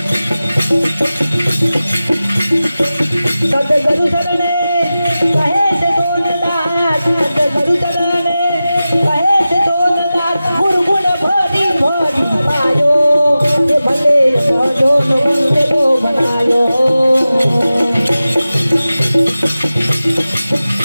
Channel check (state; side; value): inverted; both; correlation -0.95